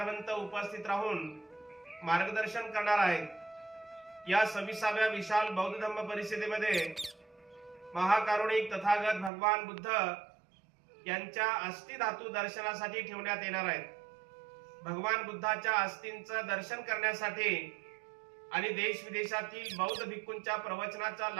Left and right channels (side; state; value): left; drops out; at 9.3 s